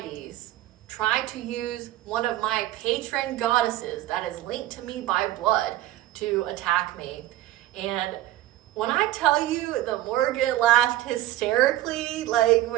try to use one of my patron goddesses that is linked to me by blood to attack me. And when I tell you, the Morgan laughed hysterically, like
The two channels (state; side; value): quieter; left; 14.8 dB